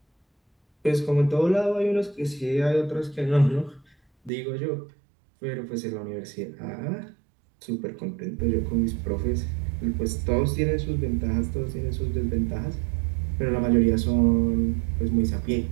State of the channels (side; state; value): left; drops out; at 4.3 s